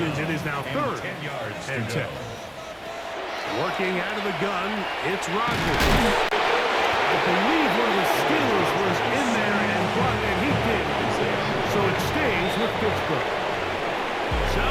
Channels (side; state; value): both; identical; correlation 1.00